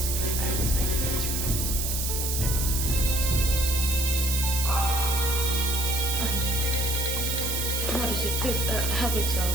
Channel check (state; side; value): noise; right; hiss, 1 dB below the sound